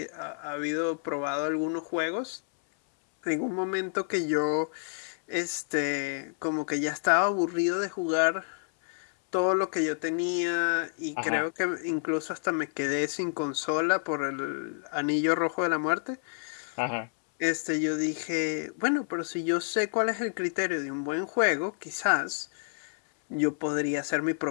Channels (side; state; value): right; silent; 59 dB below the other